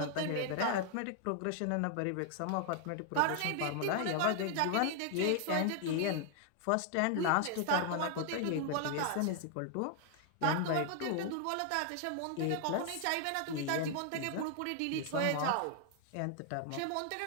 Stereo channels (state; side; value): different; both; correlation 0.00